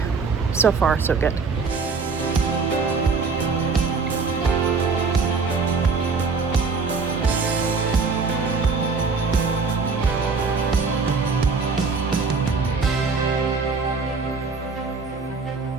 so far, so good.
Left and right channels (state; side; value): quieter; left; 4.7 dB